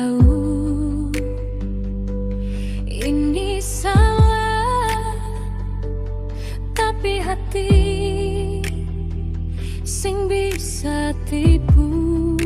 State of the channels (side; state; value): both; identical; correlation 1.00